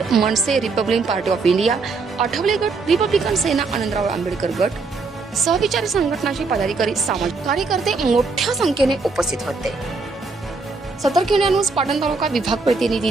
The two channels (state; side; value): quieter; left; 4.1 dB